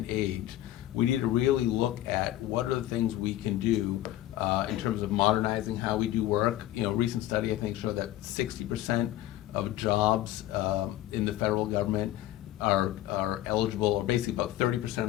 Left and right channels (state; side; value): quieter; right; 14.2 dB